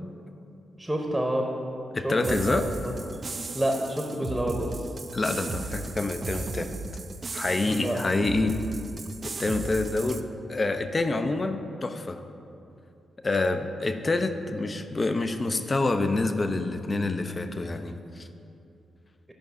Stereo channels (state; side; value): normal; both; correlation 0.91